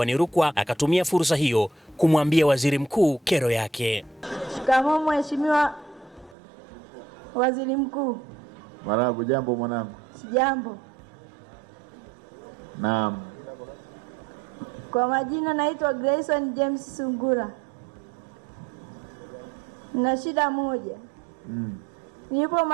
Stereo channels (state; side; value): drops out; left; at 6.4 s